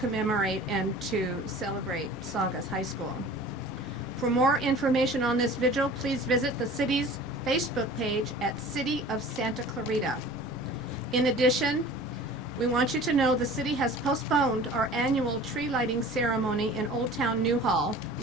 and to celebrate Saugus High School. For more information on this vigil, please visit the city's Facebook page at City of Santa Clarita. In addition, we want you to know the city has postponed our annual tree lighting ceremony in Old Town Newhall,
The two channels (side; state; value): both; normal; correlation 0.43